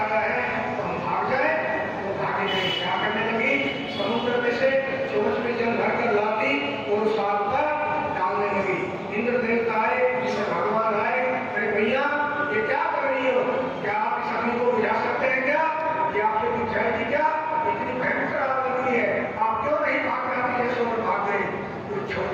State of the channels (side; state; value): both; identical; correlation 1.00